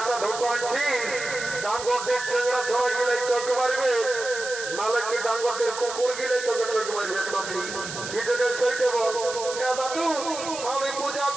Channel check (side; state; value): right; noise; hiss, 9 dB below the sound